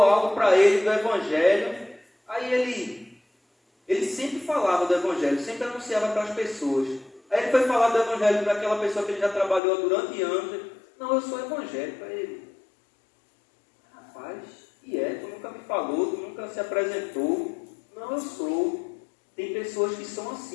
algo para ele do Evangelho. Aí ele sempre falava do Evangelho, sempre anunciava para as pessoas. Aí ele foi falar do Evangelho para aquela pessoa que ele já trabalhou durante anos. Não, eu sou evangélico. Para ele: rapaz, tu nunca me falou, tu nunca se apresentou. Não, eu sou. Tem pessoas que são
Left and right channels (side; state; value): right; drops out; at 9.6 s